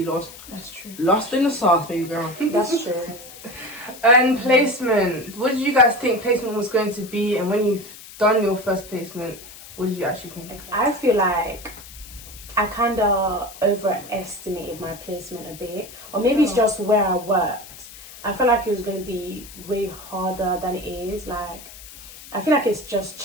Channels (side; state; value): left; noise; hiss, 17 dB below the sound